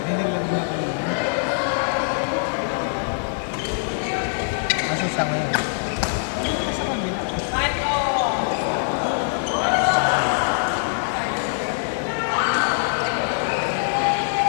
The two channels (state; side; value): silent; right; 63 dB below the other